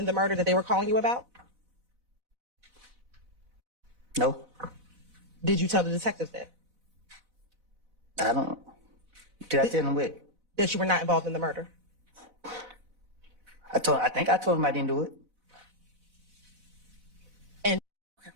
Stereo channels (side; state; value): left; late; 4.0 ms